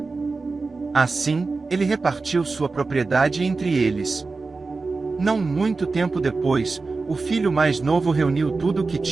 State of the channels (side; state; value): left; quieter; 4.0 dB